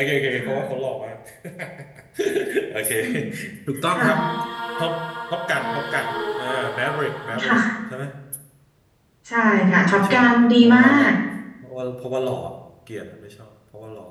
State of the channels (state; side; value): identical; both; correlation 1.00